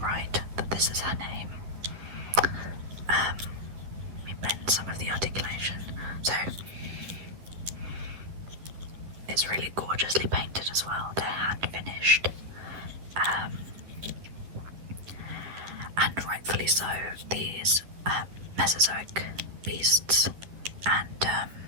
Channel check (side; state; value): left; late; 11 ms